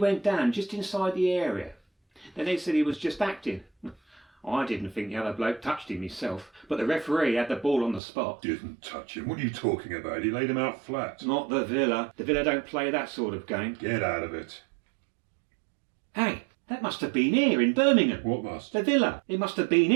down just inside the area. Then they said he was just acting. I didn't think the other bloke touched him himself, but the referee had the ball on the spot. Didn't touch him. What are you talking about? He laid him out flat. Not the Villa. The Villa don't play that sort of game. Get out of it. Hey, that must have been here in Birmingham. What must? The Villa. It must have been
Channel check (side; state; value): left; drops out; at 8.0 s